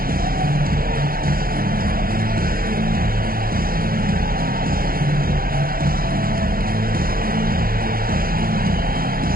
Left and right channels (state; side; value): late; left; 0.42 ms